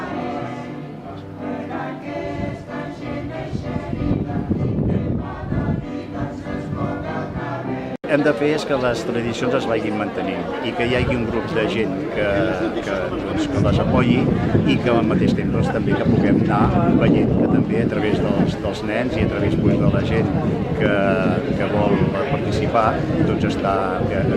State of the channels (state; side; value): identical; both; correlation 1.00